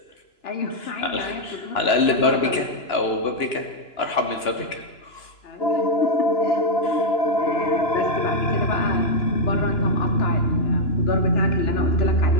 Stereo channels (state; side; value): late; right; 2.9 ms